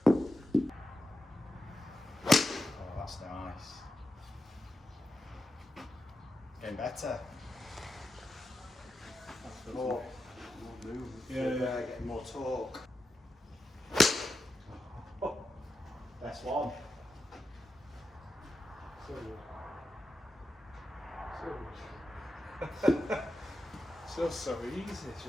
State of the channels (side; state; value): both; normal; correlation 0.89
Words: Oh, that's nice. Getting better. More movement. Yeah. Getting more torque. Oh, best one. So good. So easy,